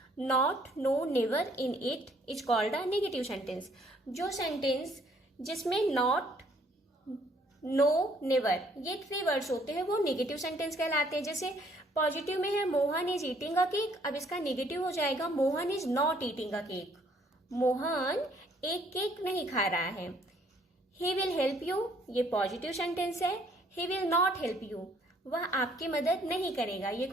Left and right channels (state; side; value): normal; both; correlation 0.63